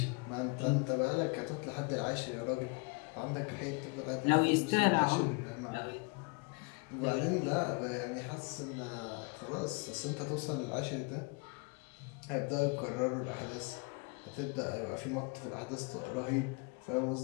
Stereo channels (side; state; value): right; quieter; 31.6 dB